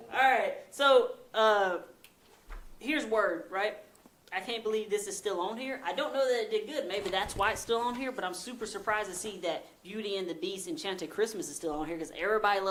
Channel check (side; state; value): both; identical; correlation 1.00